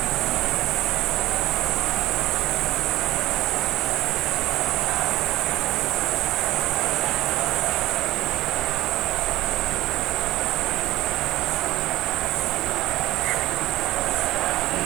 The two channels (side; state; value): left; quieter; 16.6 dB